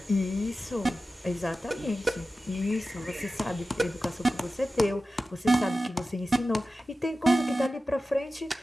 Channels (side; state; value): both; normal; correlation 0.94